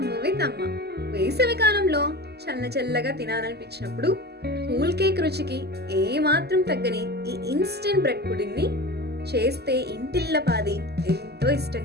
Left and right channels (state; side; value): late; left; 0.47 ms